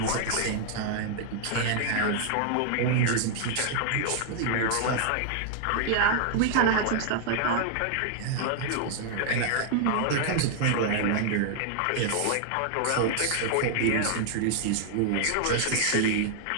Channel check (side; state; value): both; different; correlation 0.00